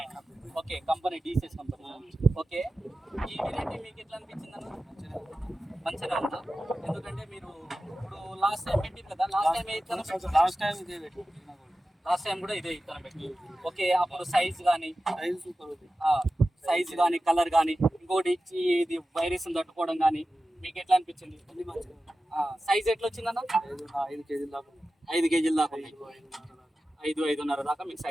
Okay, company DCS company. Okay, ఈ వెరైటీ మీకు ఎట్లా అనిపించింది అన్న? మంచిగా ఉందా? ఎందుకంటే మీరు ఇప్పుడు లాస్ట్ టైం పెట్టింది కదా, లాస్ట్ టైం కూడా ఇదే ఇత్తనం పెట్టి. ఓకే, అప్పుడు సైజ్ కానీ కలర్ కానీ ఇంకోటి ఇది వైరస్ తట్టుకోవడం కానీ మీకు ఎట్లా అనిపించింది? సైజ్ ఎట్లా వచ్చిందన్న? 5 కేజీల దాకా 5-5.5 దాకా మీకు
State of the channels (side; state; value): both; normal; correlation 0.94